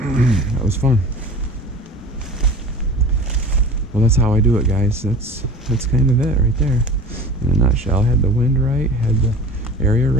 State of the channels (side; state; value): both; normal; correlation 0.39